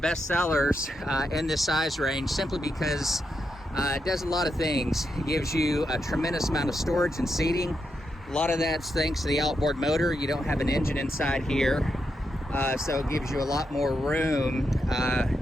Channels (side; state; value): both; normal; correlation 0.84